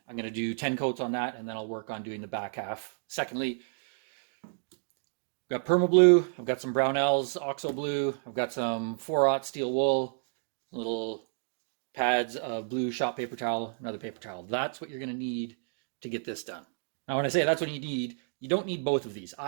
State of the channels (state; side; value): silent; left; digital silence